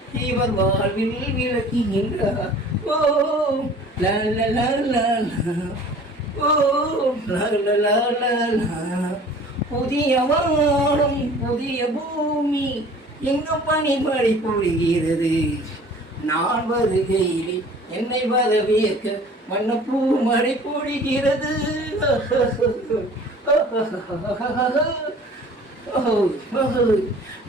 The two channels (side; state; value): both; normal; correlation 0.47